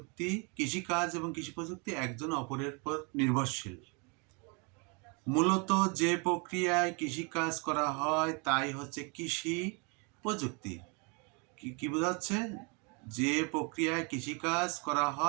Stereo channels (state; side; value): quieter; left; 32.5 dB